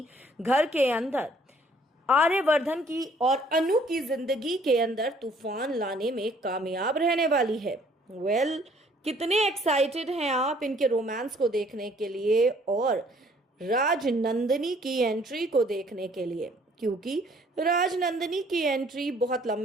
घर के अंदर आर्यवर्धन की और अनु की जिंदगी के अंदर तूफान लाने में कामयाब रहने वाली है। कितने एक्साइटेड हैं आप इनके रोमांस को देखने के लिए और राजनंदिनी की एंट्री को देखने के लिए, क्योंकि राजनंदिनी की एंट्री बहुत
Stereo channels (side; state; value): both; normal; correlation 0.60